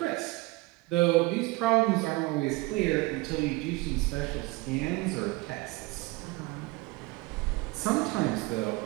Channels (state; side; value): quieter; left; 22.9 dB